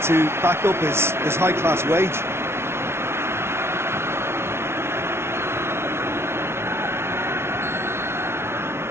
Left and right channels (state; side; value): late; left; 0.12 ms